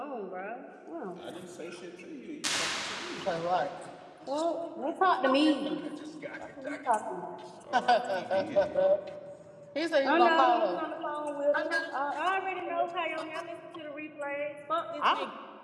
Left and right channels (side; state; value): both; identical; correlation 1.00